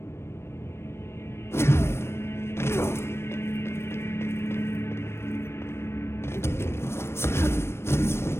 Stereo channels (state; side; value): late; right; 0.12 ms